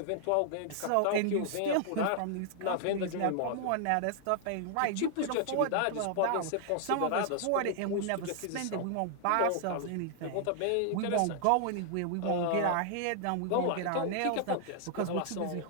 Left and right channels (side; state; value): both; different; correlation 0.00